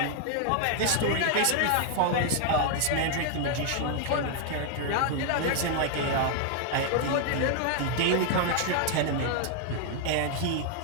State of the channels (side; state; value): both; different; correlation 0.00